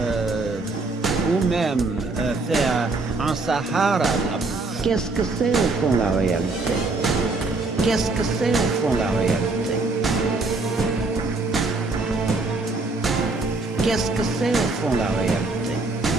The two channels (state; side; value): quieter; left; 3.5 dB